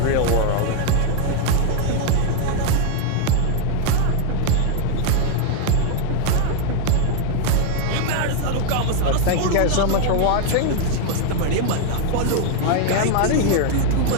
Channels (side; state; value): both; different; correlation 0.00